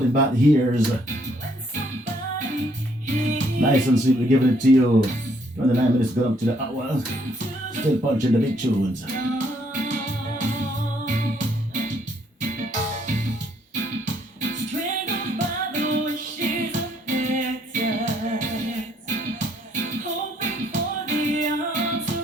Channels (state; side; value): normal; both; correlation 0.68